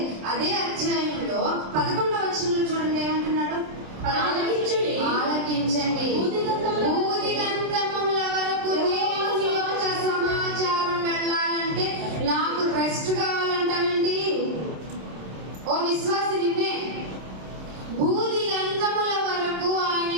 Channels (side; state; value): left; late; 27 ms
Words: అదే అధ్యాయంలో 11వ వచనంలో చూడండి ఏమంటున్నాడు? ఆలకించండి. భూదిగంతముల వరకు దేవుని యొక్క సమాచారం వెళ్ళాలంటే నాకు రెస్ట్ కావాలంటానండి. ఓ విశ్వాసి, నిన్నే భూదిగంతముల వరకు ఆయన